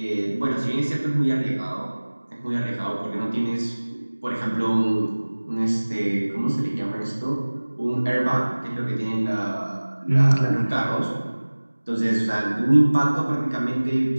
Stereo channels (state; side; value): inverted; both; correlation -1.00